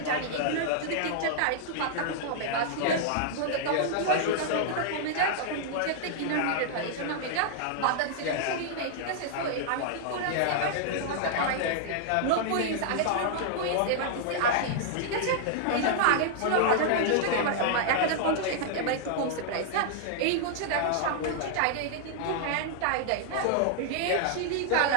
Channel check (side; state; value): both; different; correlation -0.01